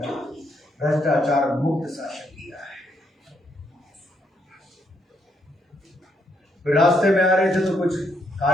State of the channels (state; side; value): normal; both; correlation 0.75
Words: भ्रष्टाचार मुक्त शासन दिया है। फिर रास्ते में आ रहे थे तो कुछ